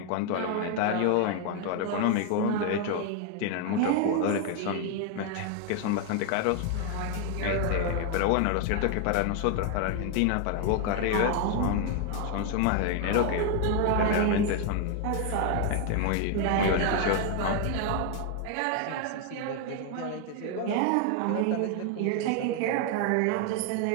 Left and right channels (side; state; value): both; different; correlation 0.00